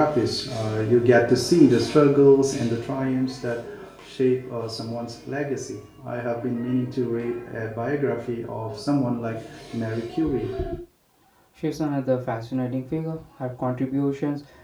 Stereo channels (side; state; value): both; identical; correlation 1.00